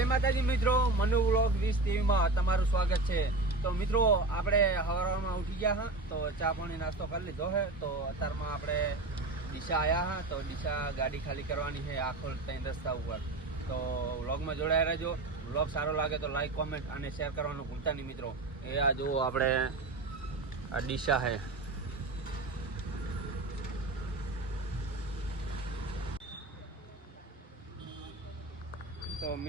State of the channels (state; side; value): quieter; left; 3.1 dB